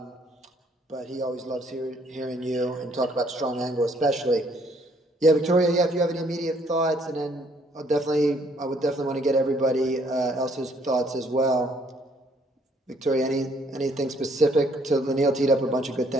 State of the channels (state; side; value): normal; both; correlation 0.65